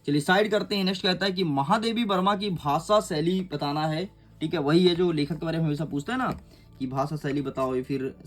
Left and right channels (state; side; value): identical; both; correlation 1.00